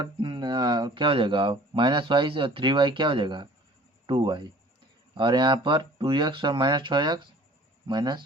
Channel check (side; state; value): both; normal; correlation 0.49